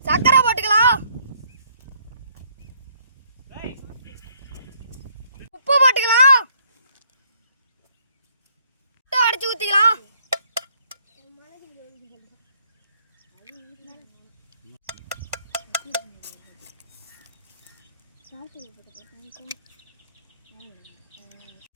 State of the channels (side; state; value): both; inverted; correlation -0.66